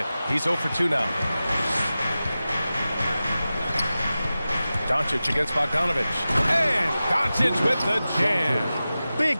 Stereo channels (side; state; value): both; inverted; correlation -0.95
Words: He's 0 for 2 now. Doncic against Bogdanović. And Doncic with the jam.